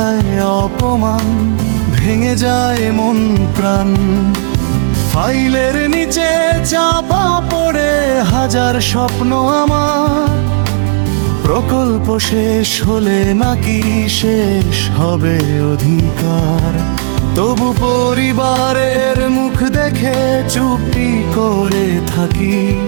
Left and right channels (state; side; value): silent; left; digital silence